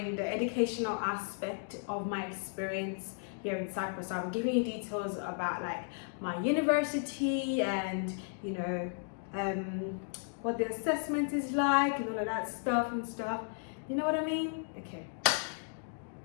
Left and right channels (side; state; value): right; silent; digital silence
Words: the educational aspect of my experience here in Cyprus. So I'm giving you details about like my university and what the assessment is like and all of that stuff. You know what I mean? Okay.